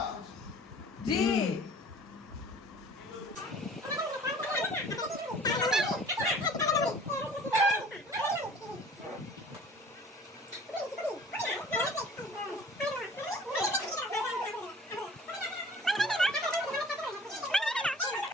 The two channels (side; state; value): both; normal; correlation 0.48